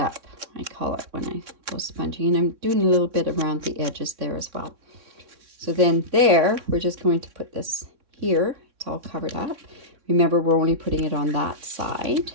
I call it when I go sponging. And I'm doing a little bit around the edges there as well. So then there, we're just going to put this here. It's all covered up. Remember, we're only putting it on that side.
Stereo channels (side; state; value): left; late; 3.6 ms